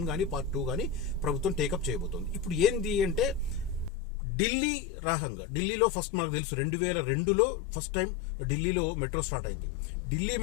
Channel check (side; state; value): right; drops out; at 3.9 s